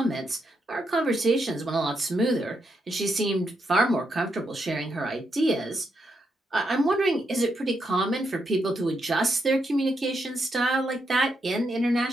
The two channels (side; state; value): both; normal; correlation 0.81